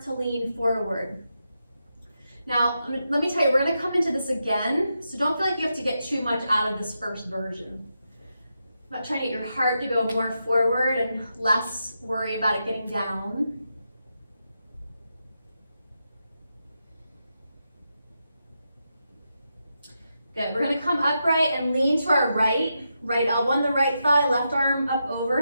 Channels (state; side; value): inverted; both; correlation -0.86